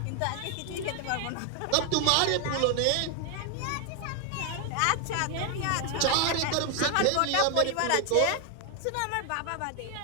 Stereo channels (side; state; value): both; different; correlation 0.00